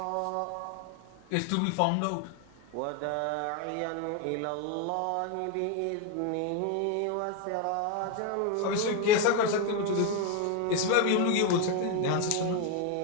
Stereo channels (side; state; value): both; different; correlation 0.01